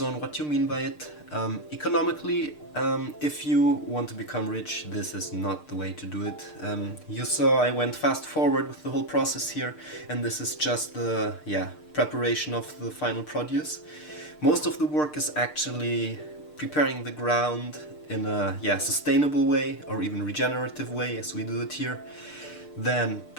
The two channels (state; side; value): late; right; 6.6 ms